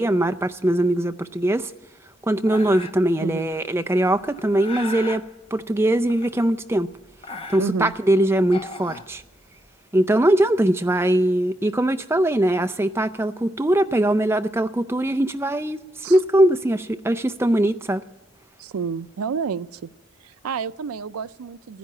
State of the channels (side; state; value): both; normal; correlation 0.81